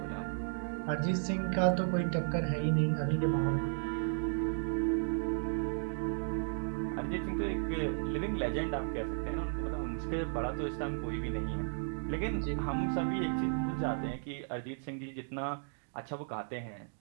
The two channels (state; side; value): silent; left; digital silence